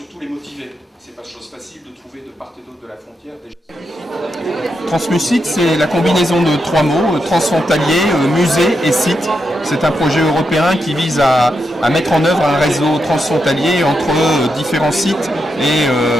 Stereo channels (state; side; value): normal; both; correlation 0.84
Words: les motiver. C'est pas chose facile de trouver de part et d'autre de la frontière. Translucide, c'est la combinaison de trois mots, transfrontalier, musée et site. C'est un projet européen qui vise à mettre en œuvre un réseau transfrontalier entre différents sites